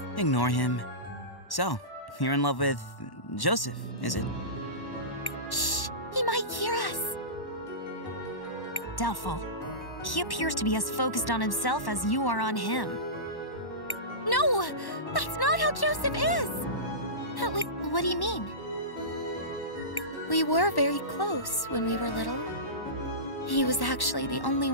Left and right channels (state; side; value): late; right; 1.1 ms